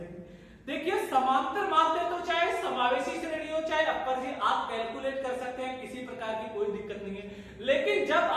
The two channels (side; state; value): both; identical; correlation 1.00